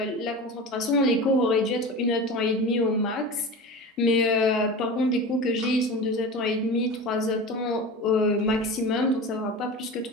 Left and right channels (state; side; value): normal; both; correlation 0.31